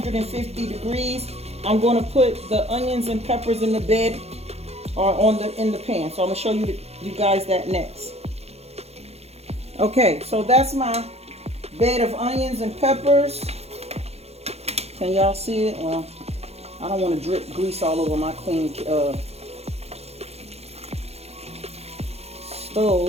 degrees. I'm gonna put the onions and peppers in the bed or in the pan. So I'm gonna show you guys that next. Okay, so that's my bed of onions and peppers. Can y'all see it? Well, I don't want to drip grease all over my clean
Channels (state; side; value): late; left; 0.30 ms